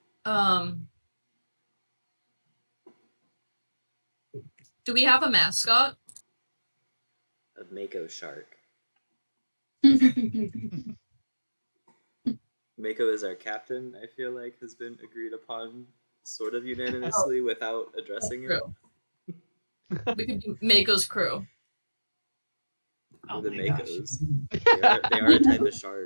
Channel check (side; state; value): both; inverted; correlation -1.00